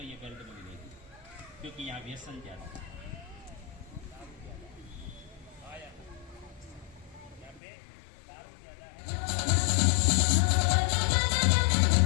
ये बेल्ट में मिलेगी, क्योंकि यहाँ व्यसन ज्यादा है। यहाँ पे दारू ज्यादा है।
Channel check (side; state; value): right; drops out; at 7.6 s